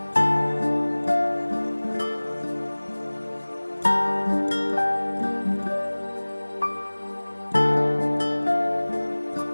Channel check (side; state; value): both; inverted; correlation -1.00